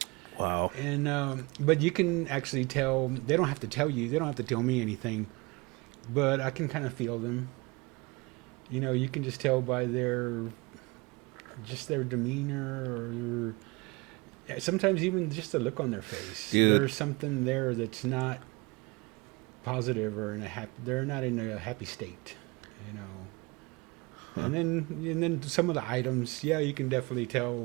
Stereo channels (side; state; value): left; quieter; 25.8 dB